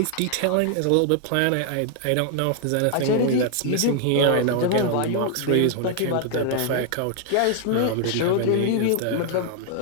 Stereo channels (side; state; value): both; different; correlation 0.00